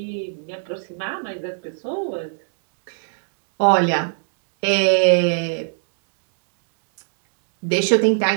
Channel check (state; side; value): silent; left; 65 dB below the other